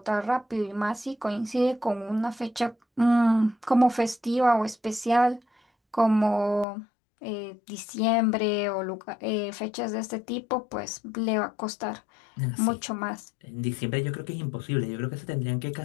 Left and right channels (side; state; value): right; drops out; at 6.7 s